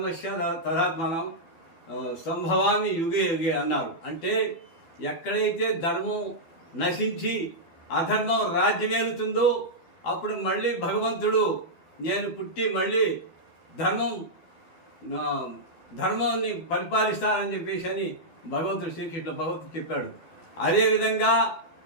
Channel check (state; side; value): late; right; 12 ms